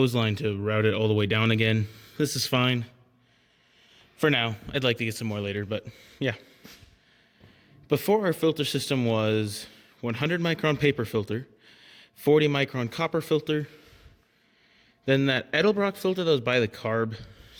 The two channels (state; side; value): identical; both; correlation 1.00